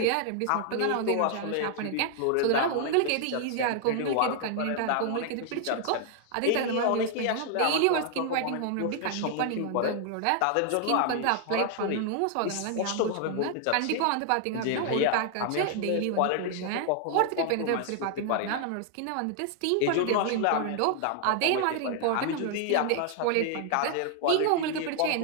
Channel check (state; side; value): different; both; correlation 0.00